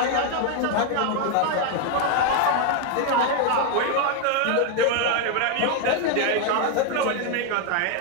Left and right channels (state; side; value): different; both; correlation 0.01